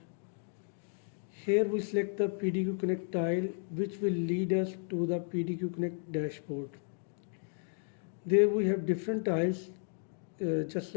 Here we select the PDQ Connect tile, which will lead us to the PDQ Connect dashboard. There we have different tiles, just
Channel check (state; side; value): silent; right; 55 dB below the other